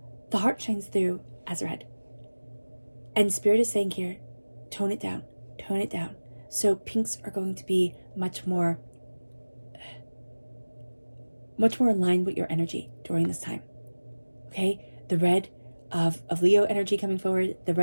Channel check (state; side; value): inverted; both; correlation -1.00